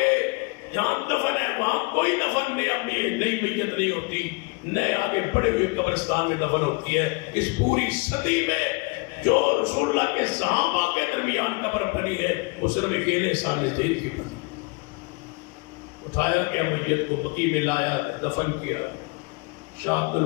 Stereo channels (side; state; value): right; quieter; 29.2 dB